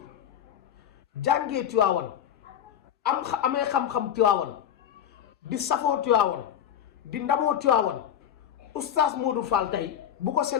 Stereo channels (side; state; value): right; quieter; 9.7 dB